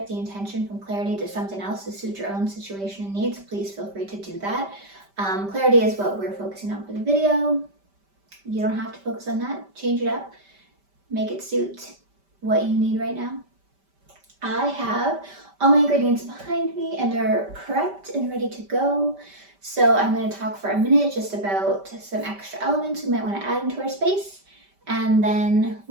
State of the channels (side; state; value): left; late; 5.1 ms